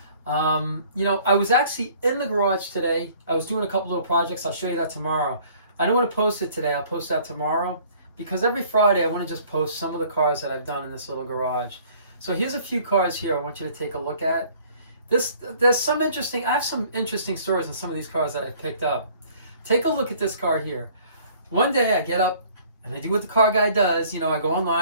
I was actually in the garage today. I was doing a couple little projects. I'll show you that tomorrow. I don't want to post it today. I'll post that tomorrow because every Friday I want to just post some of the cars that I've done in this little garage. So here's a few cars here I want you to take a look at. I have some interesting stories on some of these cars that I picked up. Take a look at this car here. One day I get up and I do what the car guy does. I go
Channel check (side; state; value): both; inverted; correlation -0.56